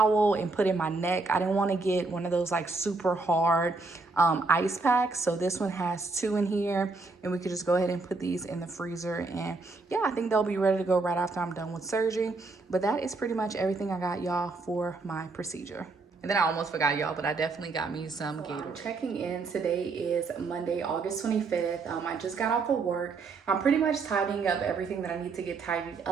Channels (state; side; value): quieter; left; 3.8 dB